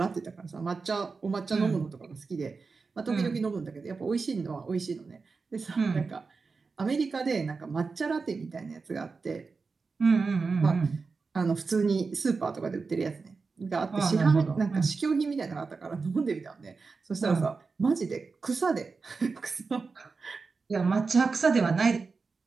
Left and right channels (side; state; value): left; quieter; 4.5 dB